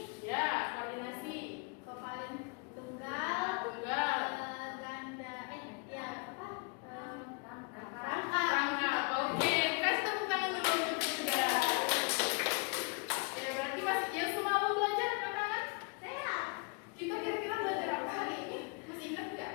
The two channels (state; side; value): quieter; right; 33.1 dB